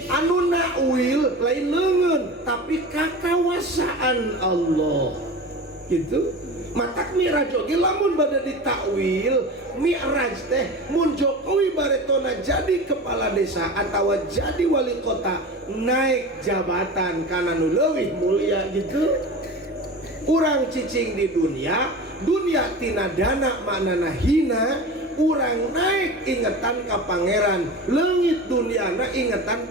anu nakwil lain leungeun tapi kakawasaan Allah gitu. Matak Mi'raj oge lamun bade ditakwil Mi'raj teh mun Jokowi baretona jadi kepala desa atawa jadi wali kota naik jabatan kana nu leuwih mulia gitu. Urang cicing di dunia tina dana maknana hina, urang naik ingetan ka pangeran, leungit duniana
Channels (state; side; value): normal; both; correlation 0.32